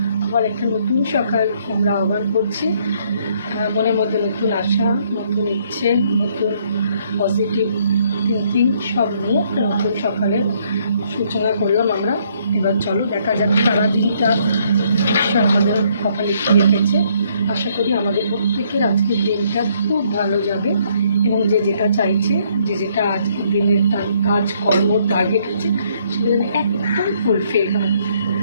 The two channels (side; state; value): both; inverted; correlation -0.68